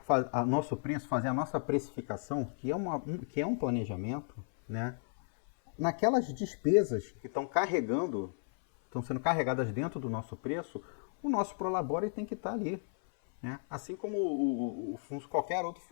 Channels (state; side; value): silent; right; 55 dB below the other